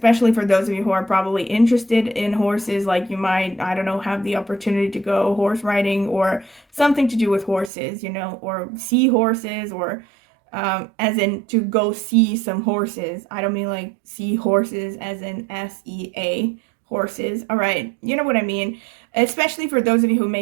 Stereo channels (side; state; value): left; drops out; at 7.7 s